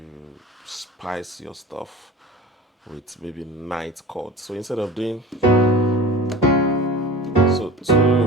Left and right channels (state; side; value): normal; both; correlation 0.36